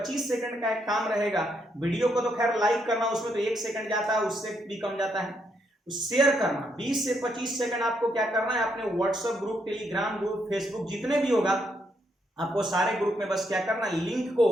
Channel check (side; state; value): both; normal; correlation 0.76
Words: सेकंड का एक काम रहेगा। वीडियो को तो खैर लाइक करना, उसमें तो 1 सेकंड जाता है, उससे भी कम जाता है। शेयर करना 20 से 25 सेकंड आपको क्या करना है, अपने WhatsApp group, Telegram group, Facebook जितने भी होगा आपको सारे ग्रुप में बस क्या करना है, लिंक को